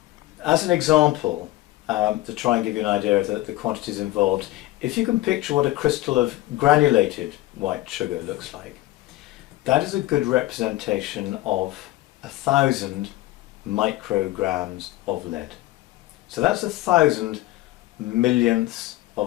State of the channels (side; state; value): right; quieter; 17.0 dB